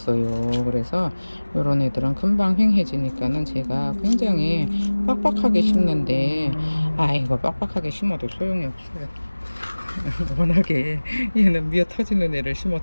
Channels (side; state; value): both; inverted; correlation -1.00